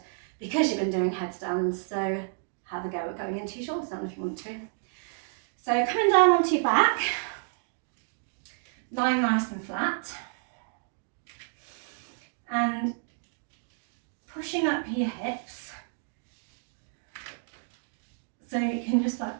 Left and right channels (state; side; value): silent; left; digital silence